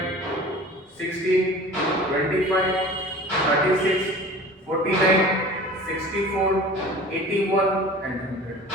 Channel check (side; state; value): both; normal; correlation 0.41